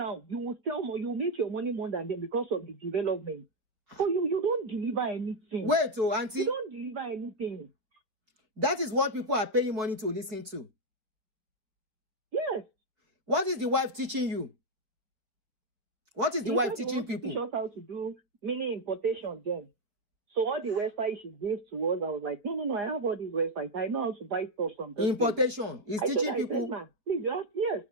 you will sell more, you make your money more than them because of the development. So you don't deliver anything. Wait, auntie. You don't deliver anything. That is what people are paying money to listen to. Yes. What is the wife teaching you? What is the wife teaching people? Teach us how to do mini importation then. So all the websites she gave to us, I was like, no, I have all these websites. I know how to buy stuff from them. Importation. He's teaching people. Please, yes.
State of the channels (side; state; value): left; late; 4.2 ms